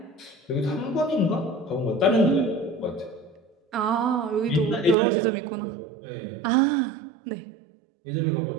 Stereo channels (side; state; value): left; drops out; at 5.0 s